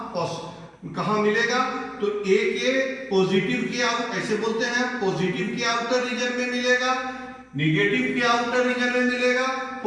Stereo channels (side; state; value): both; identical; correlation 1.00